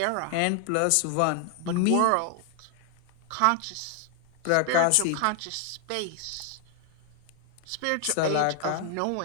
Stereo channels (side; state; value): both; different; correlation 0.00